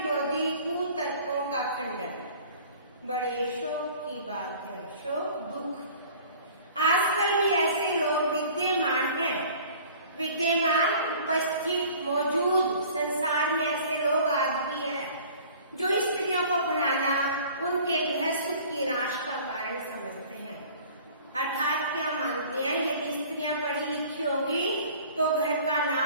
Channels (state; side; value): inverted; both; correlation -0.48